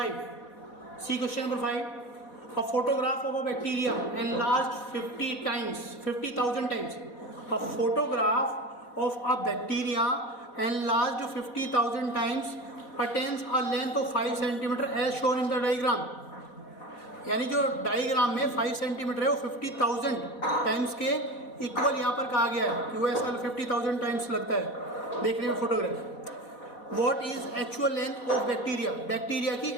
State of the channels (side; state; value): right; late; 4.1 ms